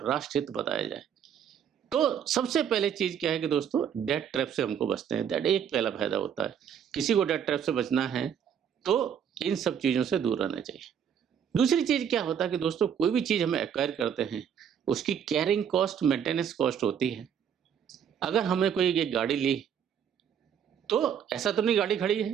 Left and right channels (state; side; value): quieter; left; 8.3 dB